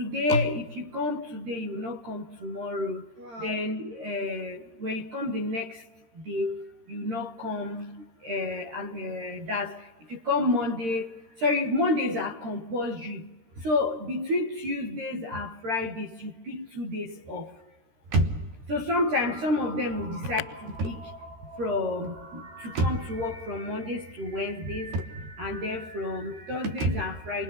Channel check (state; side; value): late; left; 13 ms